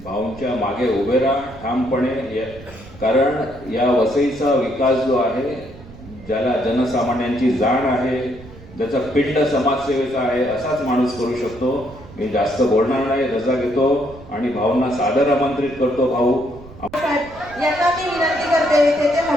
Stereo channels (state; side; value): noise; right; rumble, 18 dB below the sound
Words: भाऊंच्या मागे उभे राहा ठामपणे. कारण या वसईचा विकास जो आहे, ज्याला जनसामान्यांची जाण आहे, ज्याचा पिंड समाजसेवेचा आहे, असाच माणूस करू शकतो. मी जास्त बोलणार नाही, रजा घेतो आणि भाऊंना सादर आमंत्रित करतो. भाऊ यांना मी विनंती करते तेथे